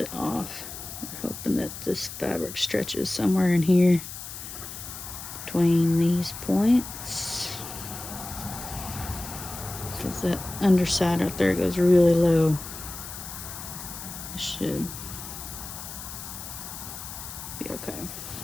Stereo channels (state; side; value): noise; left; hiss, 10 dB below the sound